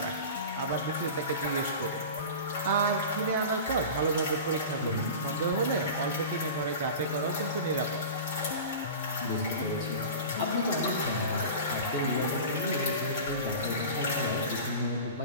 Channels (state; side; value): inverted; both; correlation -0.33